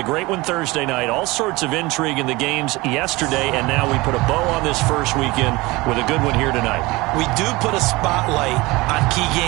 great one Thursday night. All sorts of intrigue in the games yesterday, and now we put a bow on this first weekend with a good one here tonight. We do put a spotlight on key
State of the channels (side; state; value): left; quieter; 22.0 dB